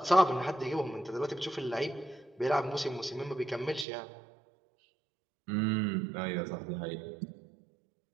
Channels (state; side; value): drops out; left; at 3.9 s